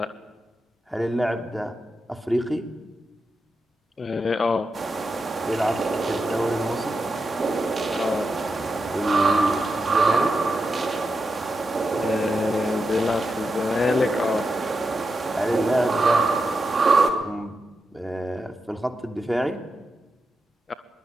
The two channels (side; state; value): both; normal; correlation 0.88